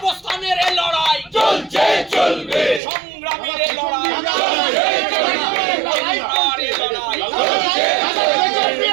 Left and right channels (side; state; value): left; drops out; at 2.8 s